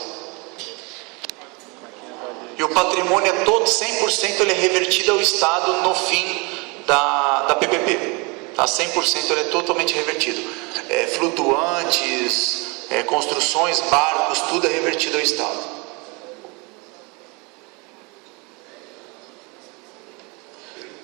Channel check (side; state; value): left; quieter; 29.1 dB